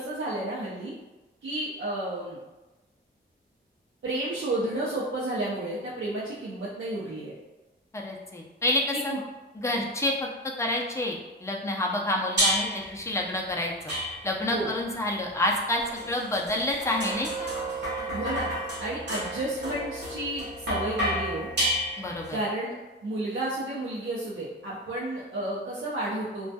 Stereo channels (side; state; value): both; normal; correlation 0.18